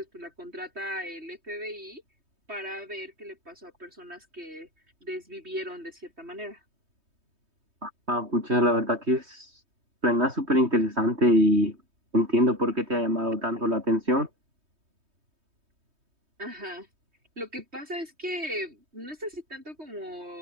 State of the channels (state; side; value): late; left; 3.2 ms